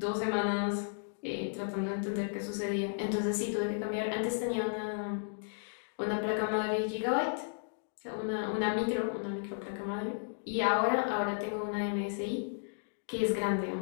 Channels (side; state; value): right; silent; digital silence